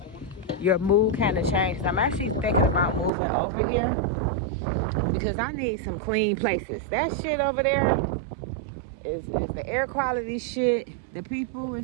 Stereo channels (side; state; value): left; drops out; at 3.1 s